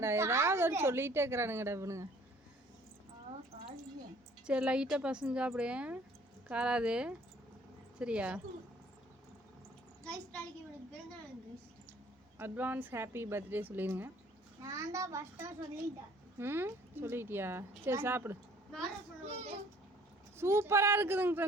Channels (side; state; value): both; normal; correlation 0.56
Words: ஏதாவது ஒரு சொல்லிகிட்டே இருக்கிறானுங்கடா இவனுங்க. சரி லைட்டாக பசங்க சாப்பிடு. காராது சரியா? அட்வான்ஸ் ஹாப்பி பர்த்டே சொல்லிடுங்க. சொல்லிட்டியா? சரி சாப்பிடு. சூப்பராக இருக்குதுங்க